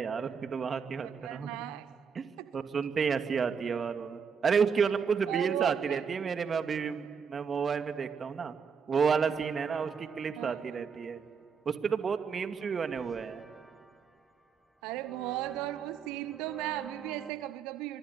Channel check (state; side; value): quieter; left; 6.4 dB